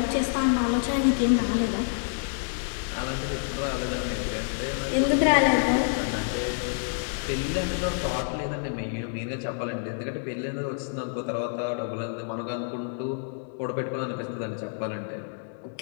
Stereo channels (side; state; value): right; silent; digital silence